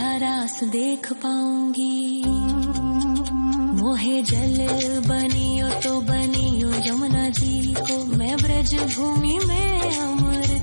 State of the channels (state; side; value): inverted; both; correlation -1.00